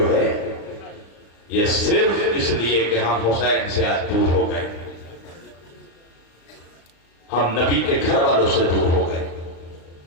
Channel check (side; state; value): right; late; 35 ms